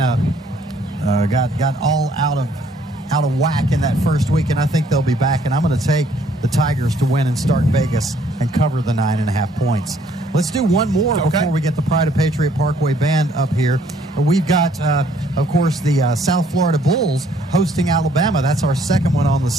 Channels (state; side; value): normal; both; correlation 0.64